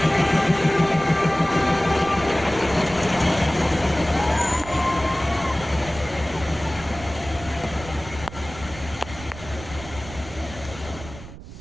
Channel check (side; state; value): right; noise; rumble, 15 dB below the sound